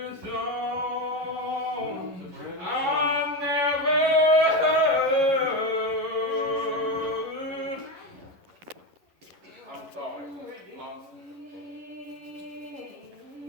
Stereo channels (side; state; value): left; late; 11 ms